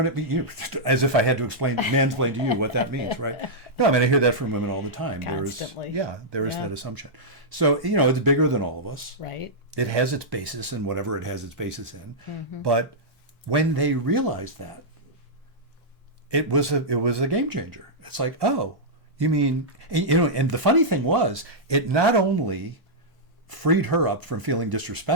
it means? As if I had to mansplain to you what that means, right? No, I hear that from women all the time. Constantly. There is that assumption. So, it's bigger than all of us. Right. It has its basis in whatever it has its basis in. But when they realized that, it was a game changer. It's like, oh, you mean, and the funny thing was, it not only freed her up from feeling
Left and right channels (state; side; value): normal; both; correlation -0.09